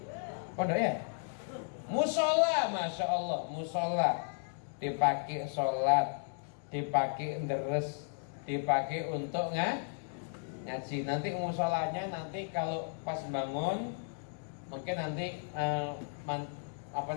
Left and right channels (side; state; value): right; silent; digital silence